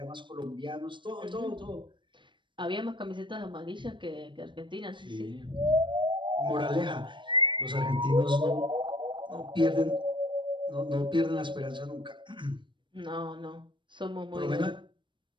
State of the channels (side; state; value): left; late; 0.23 ms